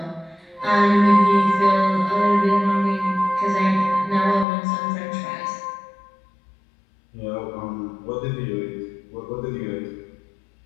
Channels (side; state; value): right; drops out; at 4.5 s